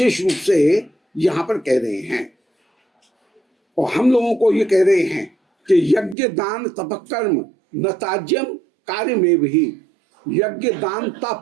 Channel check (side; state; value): left; drops out; at 6.2 s